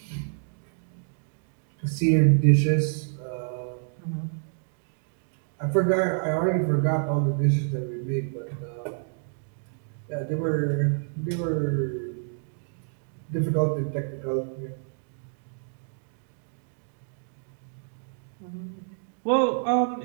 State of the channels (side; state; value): left; silent; digital silence